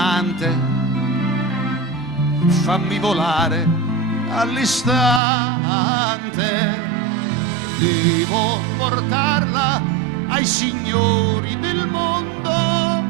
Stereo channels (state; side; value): drops out; left; at 5.2 s